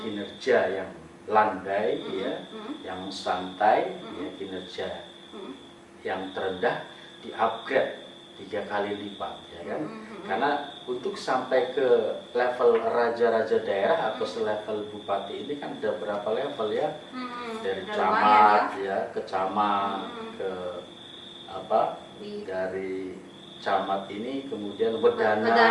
kinerja yang landai ya, yang santai ya, kinerja yang terendah di-upgrade 3 kali lipat ya kan. Karena untuk sampai ke level raja-raja daerah atau selevel bupati ini kan ada berapa level ya, dari camat ya ke camat, ke dari camat ini kemudian wedana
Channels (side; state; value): both; identical; correlation 1.00